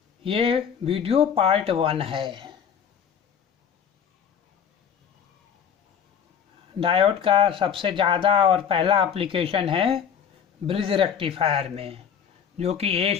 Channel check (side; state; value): right; quieter; 7.8 dB